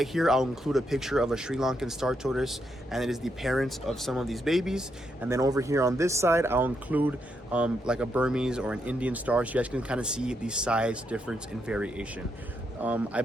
here, I'll include a picture of a Sri Lankan Star Tortoise, and it is the parents of some of these babies. And then over here on this side, I'll include like a Burmese or an Indian star, so you guys can kind of see the size difference and variation. I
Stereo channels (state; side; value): normal; both; correlation 0.80